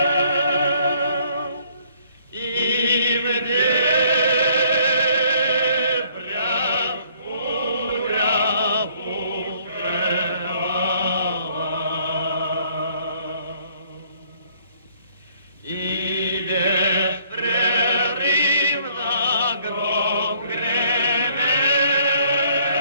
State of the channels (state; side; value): inverted; both; correlation -0.63